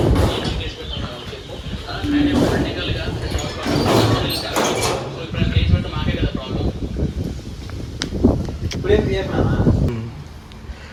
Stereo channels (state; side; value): identical; both; correlation 1.00